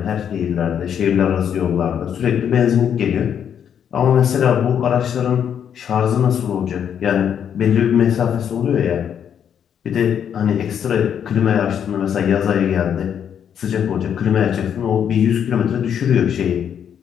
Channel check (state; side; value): quieter; right; 8.6 dB